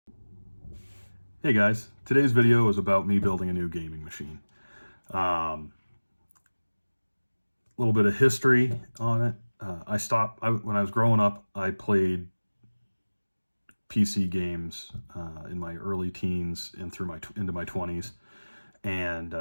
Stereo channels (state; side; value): inverted; both; correlation -1.00